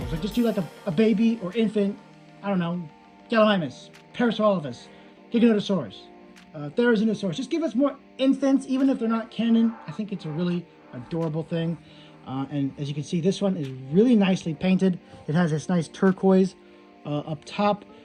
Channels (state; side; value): identical; both; correlation 1.00